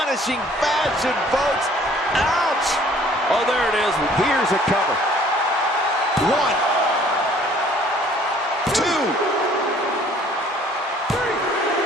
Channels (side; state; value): both; normal; correlation 0.56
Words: fashion, folks. Ouch! Oh, there it is. Here's a cover. 1, 2, 3.